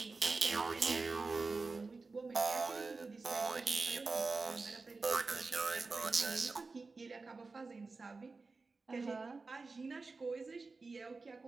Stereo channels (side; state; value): left; quieter; 3.9 dB